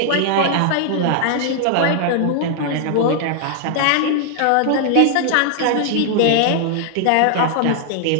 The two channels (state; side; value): different; both; correlation 0.00